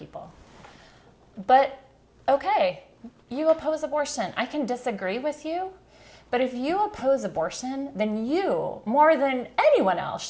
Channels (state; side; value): identical; both; correlation 1.00